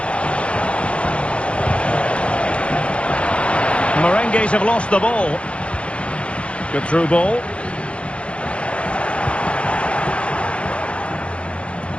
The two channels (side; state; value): right; late; 0.061 ms